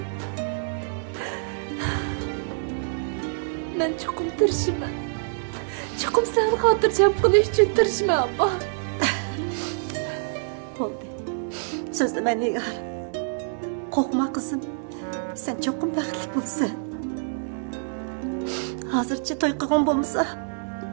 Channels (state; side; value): silent; left; 61 dB below the other